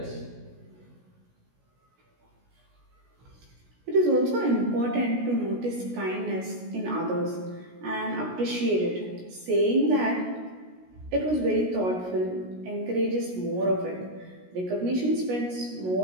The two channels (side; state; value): left; late; 16 ms